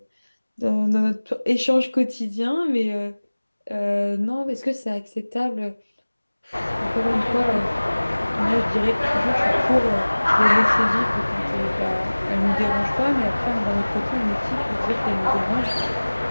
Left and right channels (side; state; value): both; inverted; correlation -1.00